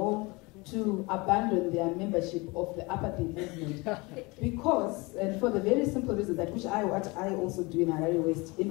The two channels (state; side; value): quieter; right; 25.6 dB